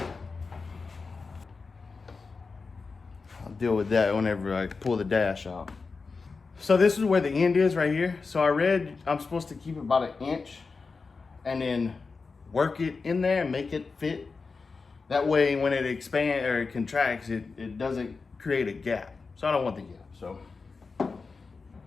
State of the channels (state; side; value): quieter; right; 4.5 dB